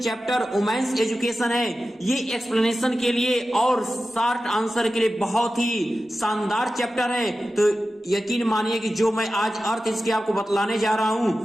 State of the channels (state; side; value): normal; both; correlation 0.94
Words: चैप्टर वुमेन्स एजुकेशन है, ये एक्सप्लेनेशन के लिए और शॉर्ट आंसर के लिए बहुत ही शानदार चैप्टर है। तो यकीन मानिए कि जो मैं आज अर्थ इसके आपको बतलाने जा रहा